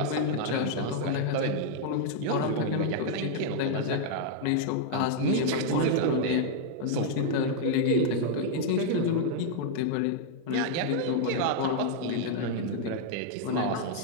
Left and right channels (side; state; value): both; different; correlation -0.01